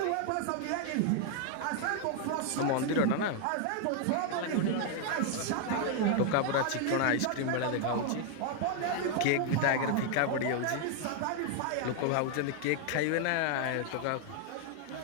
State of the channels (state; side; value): different; both; correlation 0.00